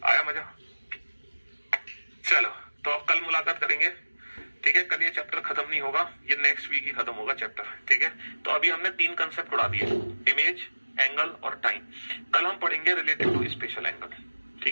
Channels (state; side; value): inverted; both; correlation -1.00